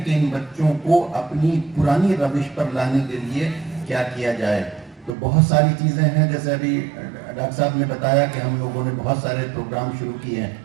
कि इन बच्चों को अपनी पुरानी रविश पर लाने के लिए क्या किया जाए। तो बहुत सारी चीज़ें हैं, जैसे अभी डॉक्टर साहब ने बताया कि हम लोगों ने बहुत सारे प्रोग्राम शुरू किए हैं,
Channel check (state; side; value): drops out; left; at 5.1 s